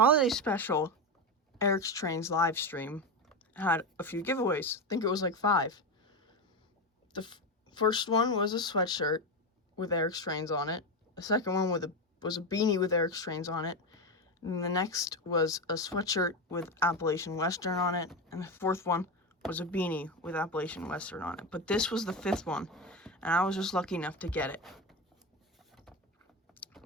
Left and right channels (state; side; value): normal; both; correlation 0.15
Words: special Eric's Trains live stream had a few giveaways. I think it was like 5. The first one was a sweatshirt with Eric's Trains on it. The second one was a beanie with Eric's Trains on it. And the next was a sweatshirt with Appalachian Western on it. And the fourth one was a beanie with Appalachian Western on it. But this was the 5th one, and I was just lucky enough to get it.